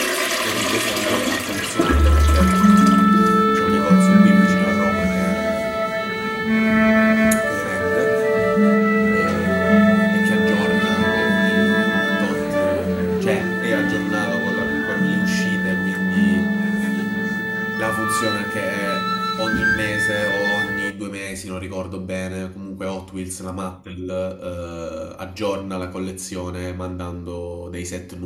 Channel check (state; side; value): identical; both; correlation 1.00